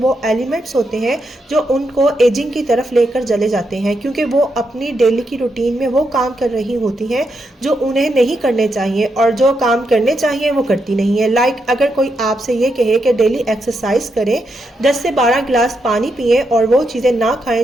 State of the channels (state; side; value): normal; both; correlation 0.82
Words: وہ ایلیمنٹس ہوتے ہیں جو ان کو ایجنگ کی طرف لے کر چلے جاتے ہیں، کیونکہ وہ اپنی ڈیلی کی روٹین میں وہ کام کر رہی ہوتی ہیں جو انہیں نہیں کرنے چاہیے، اور جو کام کرنے چاہیے وہ کرتی نہیں ہے۔ لائک اگر کوئی آپ سے یہ کہے کہ ڈیلی ایکسرسائز کریں، 10 سے 12 گلاس پانی پئیں اور وہ چیزیں نہ کھائیں